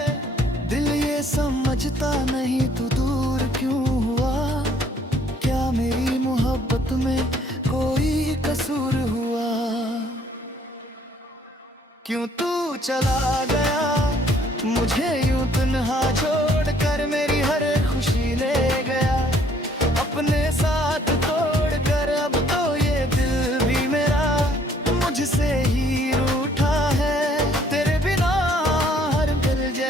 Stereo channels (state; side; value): normal; both; correlation 0.62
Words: दिल ये समझता नहीं तू दूर क्यों हुआ, क्या मेरी मोहब्बत में कोई कसूर हुआ। क्यों तू चला गया मुझे यूं तन्हा छोड़कर, मेरी हर खुशी ले गया अपने साथ तोड़कर। अब तो ये दिल भी मेरा मुझसे ही रूठा है, तेरे बिना हर दिल